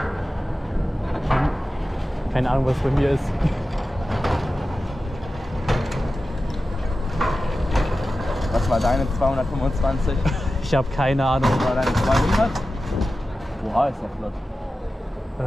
Keine Ahnung, was bei mir ist. Was war deine 225? Ich habe keine Ahnung. Was war deine 200? Oha, ist ja flott.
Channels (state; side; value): normal; both; correlation 0.94